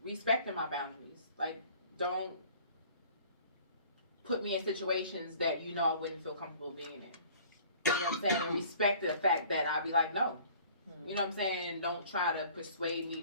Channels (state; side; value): inverted; both; correlation -0.51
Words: respecting my boundaries. Like, don't put me in situations that you know I wouldn't feel comfortable being in. You know what I'm saying? And respect the fact that I'll be like, no. You know what I'm saying? Don't try to persuade me